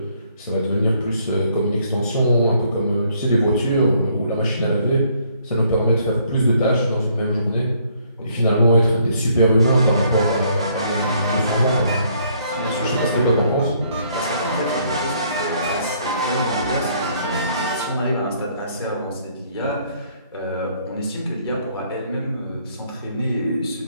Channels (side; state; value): both; inverted; correlation -0.66